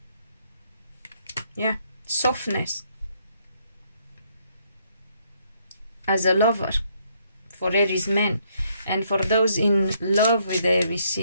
Yeah, softness as a lover for Aries men. And for those in love with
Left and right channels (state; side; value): inverted; both; correlation -0.70